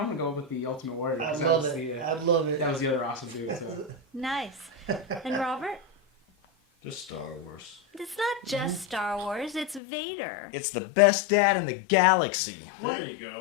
gonna go with the Ultimate Warrior. I 'cause that love was it. the, I love it. that was the other awesome dude. So. Nice. And Robert? Just Star Wars. It's not just Star Wars, it's Vader. It's the best dad in the galaxy. There you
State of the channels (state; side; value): drops out; right; at 9.8 s